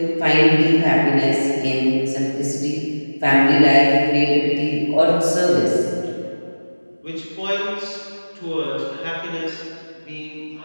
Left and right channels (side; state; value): both; inverted; correlation -1.00